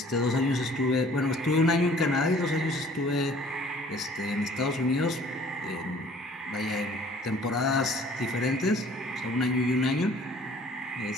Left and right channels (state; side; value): normal; both; correlation 0.53